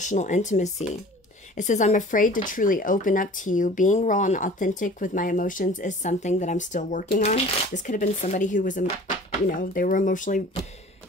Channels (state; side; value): normal; both; correlation 0.45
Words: intimacy. It says, I'm afraid to truly open up to you. Being raw and authentic with my emotions is something that I'm still working on. This could have been somebody who was, you know, they were emotionally